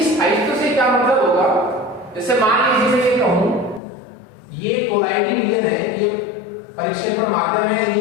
स्थायित्व से क्या मतलब होगा? जैसे मान लीजिए मैं ये कहूं ये कोलॉइडी विलयन है, ये परिक्षेपण माध्यम है,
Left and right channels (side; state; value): right; drops out; at 3.8 s